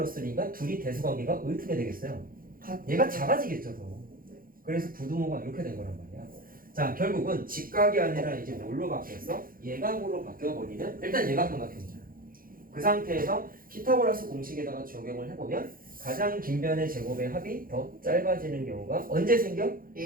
둘이 대수관계가 어떻게 되겠어요? 얘가 작아지겠죠, 더. 그래서 부등호가 이렇게 된 거란 말이야. 자, 결국은 직각이 아니라 이제 뭘로 바뀌었어? 예각으로 바뀌어버리면 일단 예각삼각형이잖아. 그 상태에서 피타고라스 공식에다가 적용을 해보면 가장 긴 변의 제곱의 합이 더 짧아지는 경우가 언제 생겨?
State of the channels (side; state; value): left; late; 0.41 ms